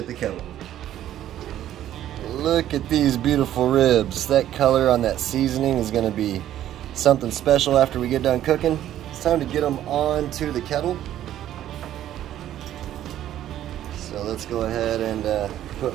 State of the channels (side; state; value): left; quieter; 12.1 dB